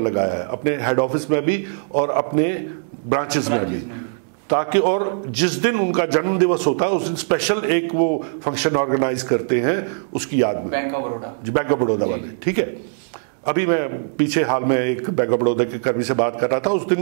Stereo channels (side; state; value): left; silent; 65 dB below the other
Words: लगाया है अपने हेड ऑफिस में भी और अपने ब्रांचेस में भी, ताकि और जिस दिन उनका जन्म दिवस होता है उस दिन स्पेशल एक वो फंक्शन ऑर्गेनाइज करते हैं उसकी याद में। Bank of Baroda, bank of Baroda वाले, ठीक है। अभी मैं पीछे हाल में एक बैंक ऑफ बड़ौदा के कर्मी से बात कर रहा था, उस